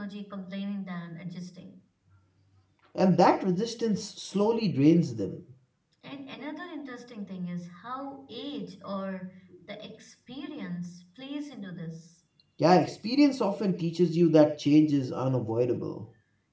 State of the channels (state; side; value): identical; both; correlation 1.00